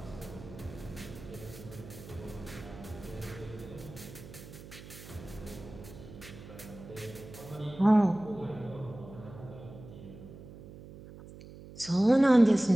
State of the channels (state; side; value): noise; right; hum, 16 dB below the sound